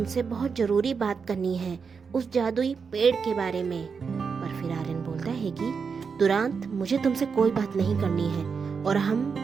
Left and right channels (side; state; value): left; quieter; 5.7 dB